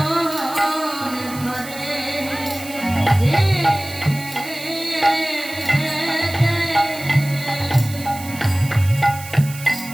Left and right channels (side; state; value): right; noise; hiss, 14 dB below the sound